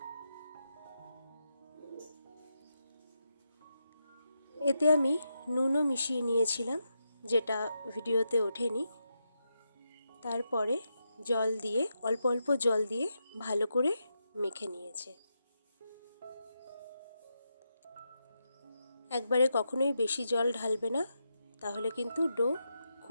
এতে আমি নুনও মিশিয়ে নিয়েছিলাম, যেটা ভিডিওতে ওঠেনি। তারপরে জল দিয়ে, অল্প অল্প জল দিয়ে ভালো করে মেখে নিয়েছে। একবারে কখনোই বেশি জল ঢালবে না, তাহলে কিন্তু ডো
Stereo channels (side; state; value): both; inverted; correlation -0.85